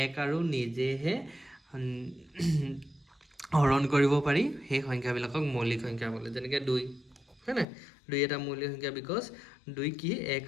এক আৰু নিজেহে হৰণ কৰিব পাৰি সেই সংখ্যাবিলাকক মৌলিক সংখ্যা বোলে যেনেকৈ 2 হয় না 2 এটা মৌলিক সংখ্যা বিকজ 2 কি এক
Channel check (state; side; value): drops out; right; at 7.7 s